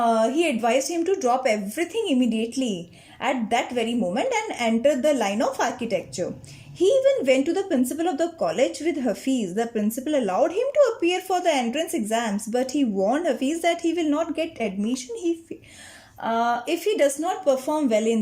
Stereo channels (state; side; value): identical; both; correlation 1.00